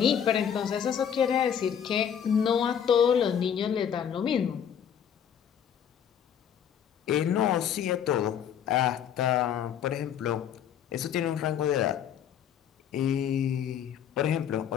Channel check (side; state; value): right; quieter; 8.7 dB